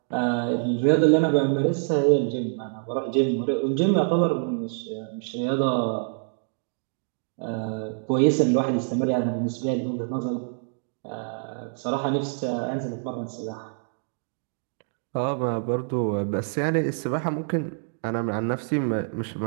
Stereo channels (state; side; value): silent; left; digital silence